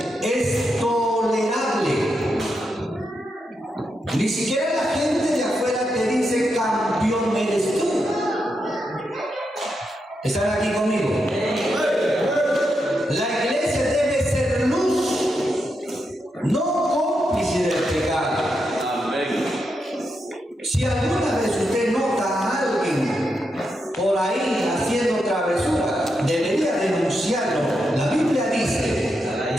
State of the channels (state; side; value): normal; both; correlation 0.84